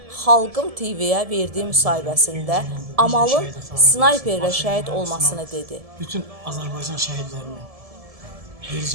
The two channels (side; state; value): left; late; 1.7 ms